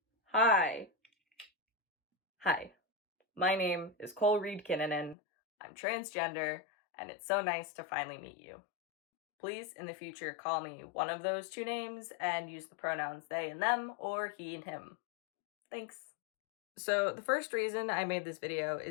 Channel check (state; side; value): drops out; right; at 5.2 s